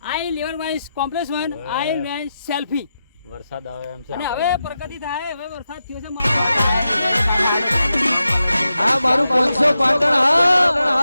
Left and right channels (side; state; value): both; inverted; correlation -0.89